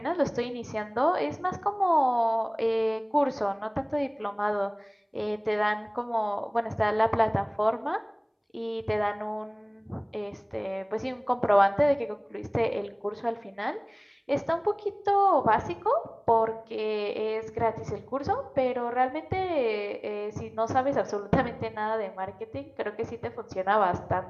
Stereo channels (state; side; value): identical; both; correlation 1.00